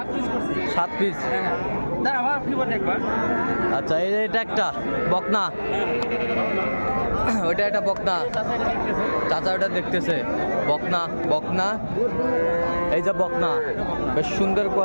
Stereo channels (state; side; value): inverted; both; correlation -1.00